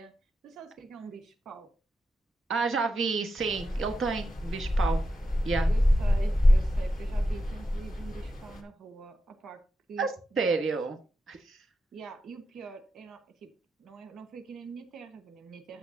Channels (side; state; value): both; normal; correlation 0.88